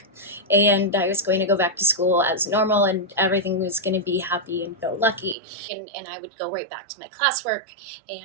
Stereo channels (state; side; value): drops out; left; at 5.4 s